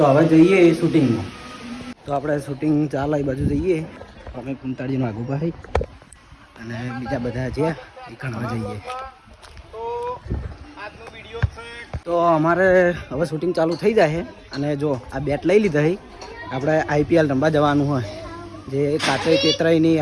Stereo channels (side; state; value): both; identical; correlation 1.00